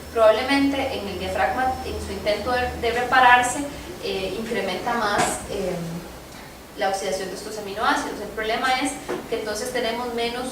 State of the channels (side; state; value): both; identical; correlation 1.00